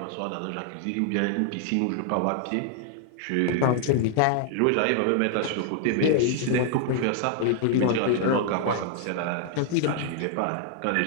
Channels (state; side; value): different; both; correlation 0.00